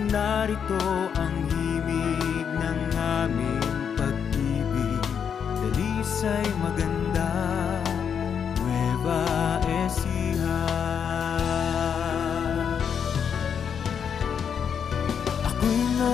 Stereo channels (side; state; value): right; quieter; 7.4 dB